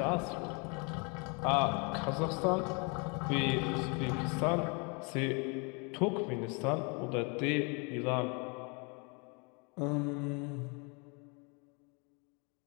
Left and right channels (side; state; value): right; quieter; 33.1 dB